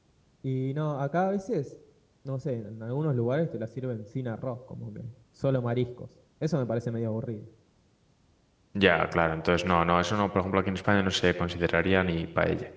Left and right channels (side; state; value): both; identical; correlation 1.00